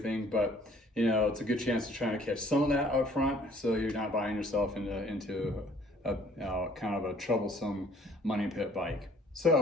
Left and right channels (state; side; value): normal; both; correlation 0.58